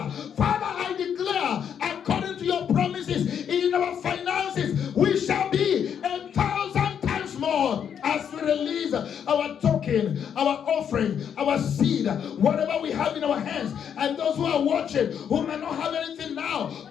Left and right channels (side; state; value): right; quieter; 8.2 dB